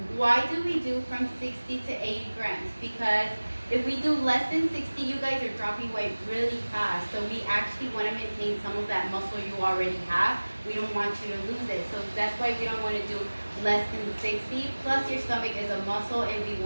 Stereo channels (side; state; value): both; inverted; correlation -1.00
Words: Why do we do from 60 to 80 grams? Because if we do less than 60, you guys are dropping weight really fast. So we actually want to maintain some of that muscle you already have. We don't want you to lose it. So that's why we don't want to do less than 60. Plus your stomach is a muscle and we